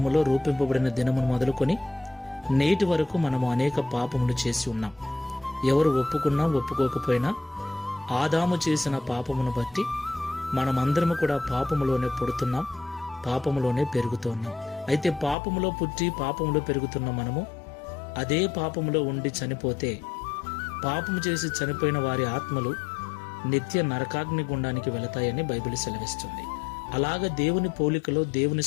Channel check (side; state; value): right; drops out; at 15.4 s